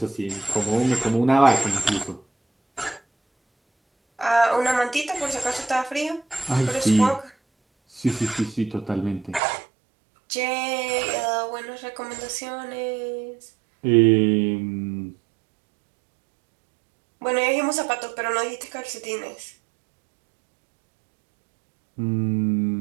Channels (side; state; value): left; drops out; at 9.4 s